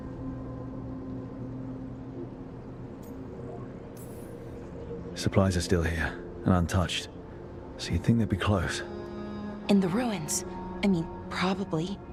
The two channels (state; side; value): identical; both; correlation 1.00